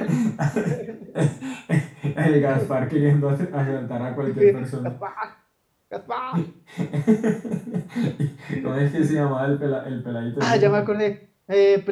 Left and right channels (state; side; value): identical; both; correlation 1.00